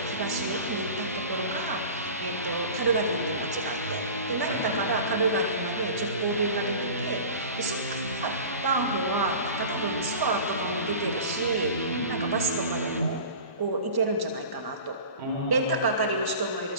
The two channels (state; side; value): inverted; both; correlation -0.37